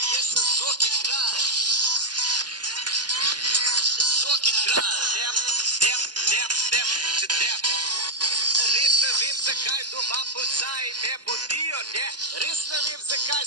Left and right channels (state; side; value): late; left; 0.70 ms